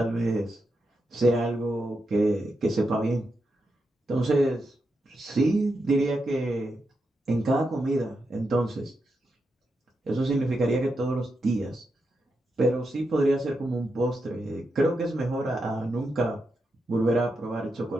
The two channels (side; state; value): both; normal; correlation 0.86